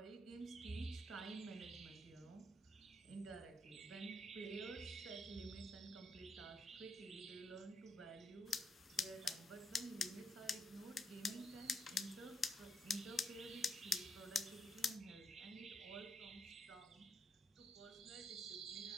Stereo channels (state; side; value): normal; both; correlation 0.79